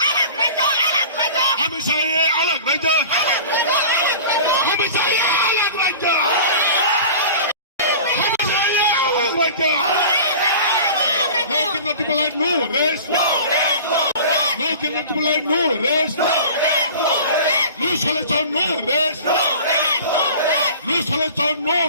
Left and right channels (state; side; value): inverted; both; correlation -0.40